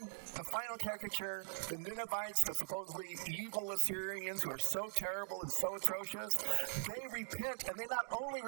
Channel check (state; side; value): silent; left; digital silence